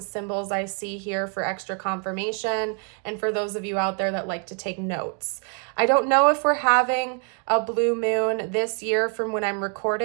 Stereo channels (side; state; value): left; quieter; 39.7 dB